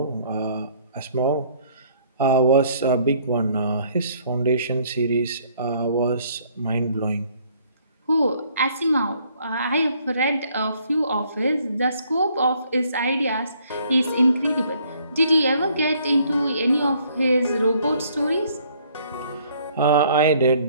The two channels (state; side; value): inverted; both; correlation -0.62